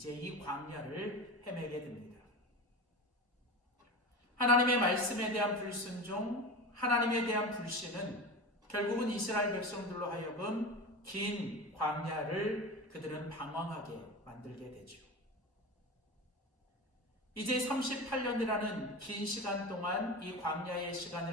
이 광야를 헤매게 됩니다. 하나님의 말씀에 대한 불순종, 하나님에 대한 불신은 결국은 이스라엘 백성들로 하여금 긴 광야를 그들은 방황하게 만들게 되죠. 이제 38년이라는 긴 시간 동안 이 광야의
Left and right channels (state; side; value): normal; both; correlation 0.27